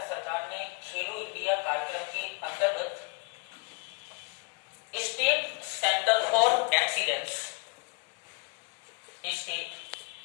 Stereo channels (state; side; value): quieter; right; 33.9 dB